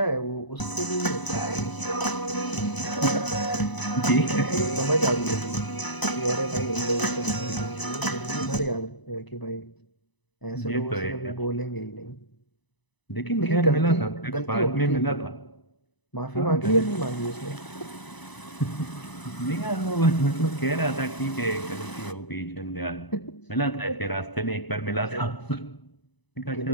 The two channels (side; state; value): right; late; 1.0 ms